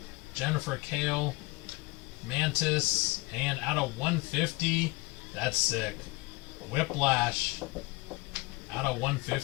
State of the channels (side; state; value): right; quieter; 23.6 dB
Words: Jennifer Kale, Mantis, and out of 150, that's sick. Whiplash, out of